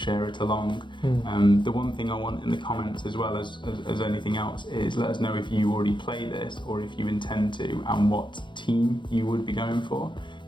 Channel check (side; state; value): right; late; 0.23 ms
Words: it along. The one thing I want in the comments as well as anything else is let us know if you already play this or if you intend to, and what team you would be going for,